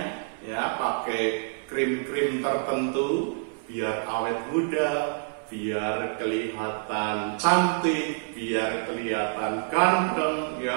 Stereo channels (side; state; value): left; silent; 58 dB below the other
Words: ya, pakai krim-krim tertentu biar awet muda, biar kelihatan cantik, biar kelihatan ganteng,